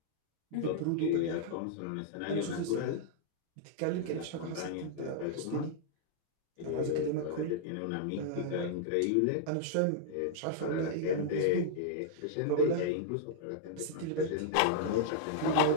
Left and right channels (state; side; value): different; both; correlation -0.02